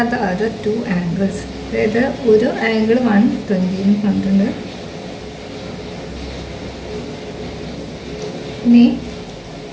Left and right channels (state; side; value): identical; both; correlation 1.00